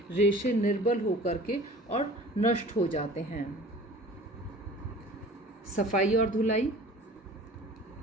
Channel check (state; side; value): normal; both; correlation 0.44